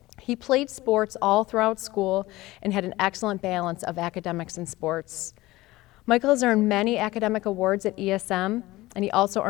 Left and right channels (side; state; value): right; quieter; 18.6 dB